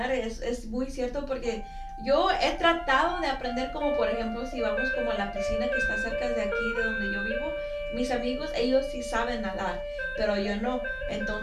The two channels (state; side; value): identical; both; correlation 1.00